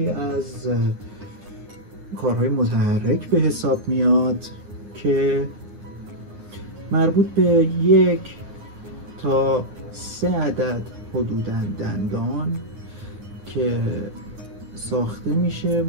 از کارهای متحرک به حساب میاد که مربوط به 1 تا 3 عدد حدوداً دندان که ساخته میشه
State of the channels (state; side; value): late; left; 9.6 ms